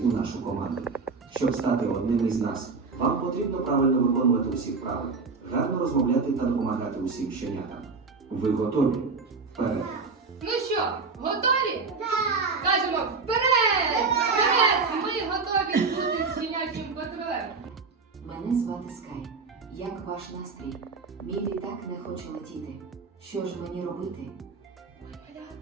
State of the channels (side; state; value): left; quieter; 4.5 dB